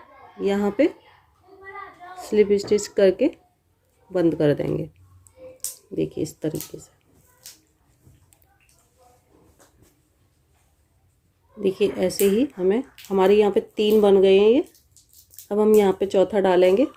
यहाँ पे स्लिप स्टिच करके बंद कर देंगे। देखिए इस तरीके से। देखिए ऐसे ही हमारे यहाँ पे 3 बन गए हैं ये। अब हम यहाँ पे चौथा डालेंगे।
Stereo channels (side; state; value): both; identical; correlation 1.00